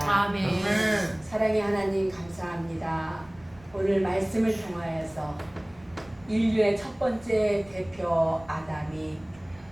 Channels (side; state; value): right; noise; rumble, 25 dB below the sound